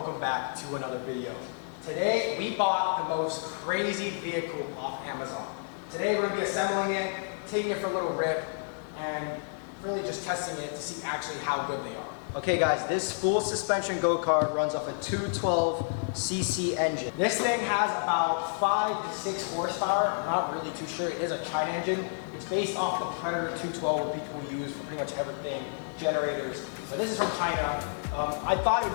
back to another video. Today we bought the most crazy vehicle off Amazon. Today we're going to be assembling it, taking it for a little rip, and really just testing it to see actually how good they are. Okay guys, this full suspension go-kart runs off a 212cc engine. This thing has about 5 to 6 horsepower. I'm not really too sure. It is a China engine. It's based off the Predator 212, what people use for pretty much everything, generators. So this is from China. I thought it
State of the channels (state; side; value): silent; right; digital silence